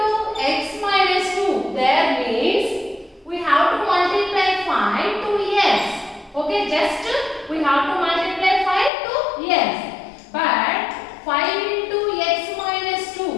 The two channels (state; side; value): drops out; right; at 8.9 s